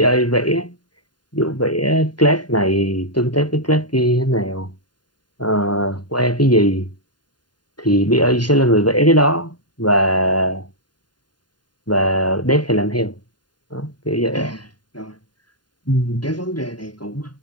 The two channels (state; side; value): late; right; 0.70 ms